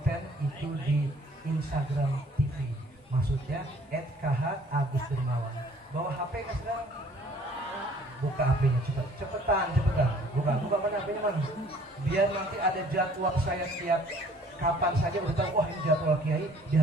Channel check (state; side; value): normal; both; correlation 0.56